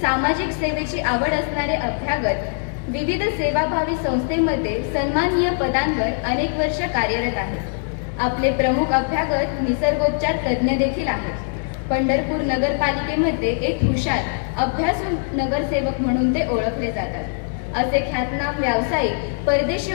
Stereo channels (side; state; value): right; silent; 64 dB below the other